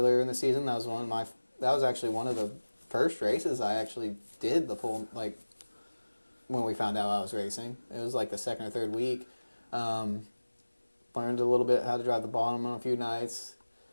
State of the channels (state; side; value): inverted; both; correlation -1.00